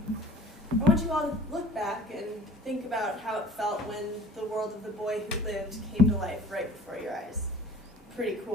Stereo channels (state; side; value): normal; both; correlation 0.47